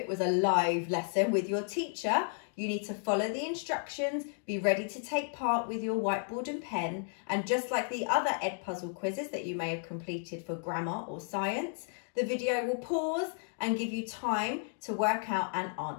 was a live lesson with your teacher. You need to follow the instructions, be ready to take part with your whiteboard and pen, and just like the other Edpuzzle quizzes that you may have completed for grammar or science, the video will pause and give you time to work out and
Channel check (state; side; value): silent; right; 56 dB below the other